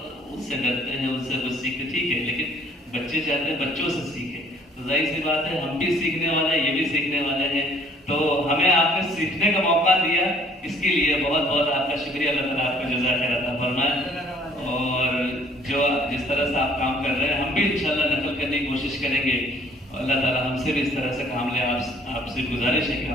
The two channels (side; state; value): both; normal; correlation 0.57